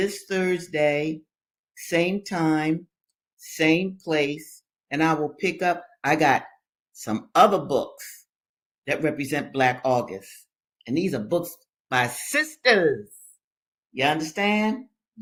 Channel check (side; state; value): both; identical; correlation 1.00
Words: Thursday, same time, same place, and I will pick up. I got some other books that represent Black August. And these are books by sisters. You understand?